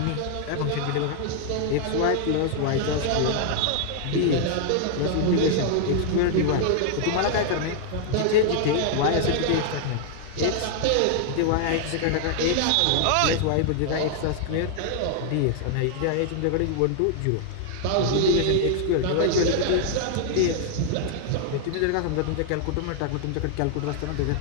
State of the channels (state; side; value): different; both; correlation -0.01